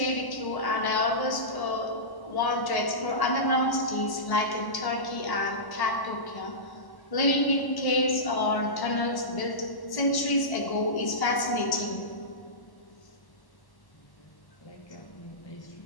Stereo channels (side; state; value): right; late; 1.1 ms